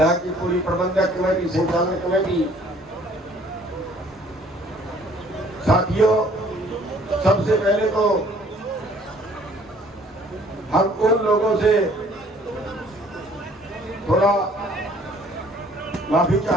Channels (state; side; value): normal; both; correlation 0.58